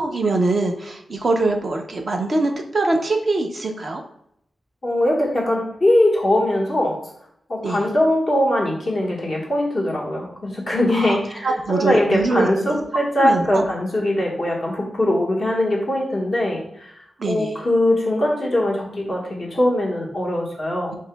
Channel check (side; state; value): both; normal; correlation 0.90